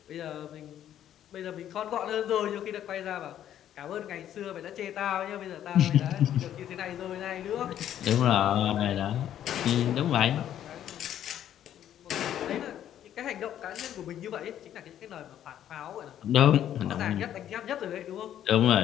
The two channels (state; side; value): quieter; right; 10.9 dB